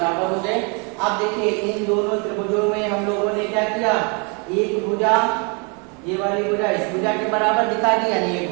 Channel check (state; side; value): quieter; left; 34.2 dB